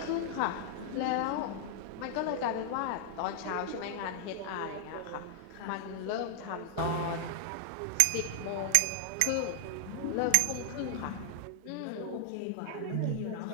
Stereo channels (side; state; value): both; different; correlation 0.00